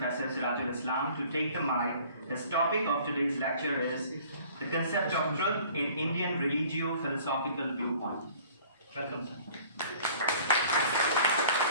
Sirajul Islam to take the mic. His topic of today's lecture is the concept of truth in Indian religio-philosophical viewpoint. Welcome, sir.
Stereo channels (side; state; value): both; inverted; correlation -0.52